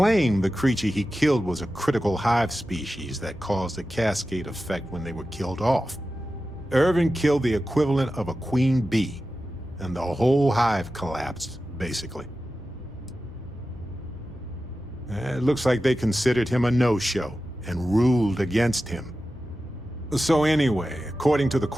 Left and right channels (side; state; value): both; normal; correlation 0.93